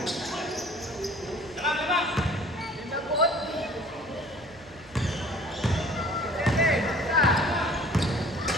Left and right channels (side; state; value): left; noise; hum, 26 dB below the sound